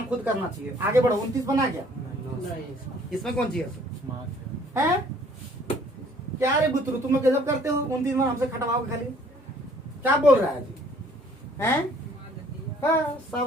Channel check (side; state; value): both; normal; correlation 0.58